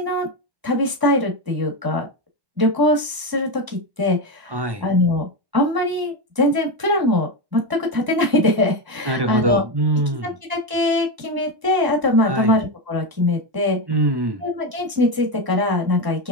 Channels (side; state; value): left; late; 1.0 ms